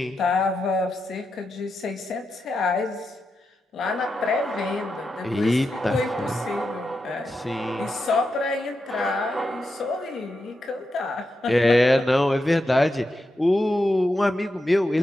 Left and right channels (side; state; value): both; normal; correlation 0.87